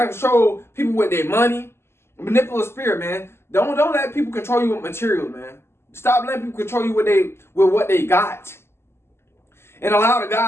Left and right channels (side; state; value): right; late; 0.12 ms